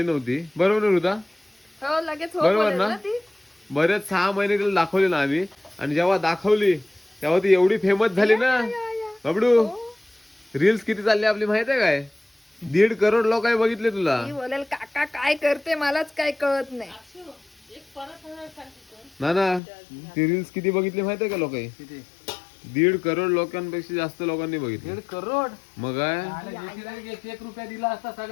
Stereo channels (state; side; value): drops out; right; at 19.6 s